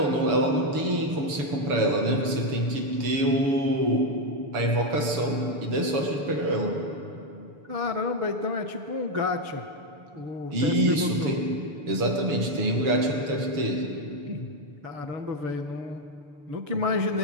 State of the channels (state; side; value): late; left; 6.8 ms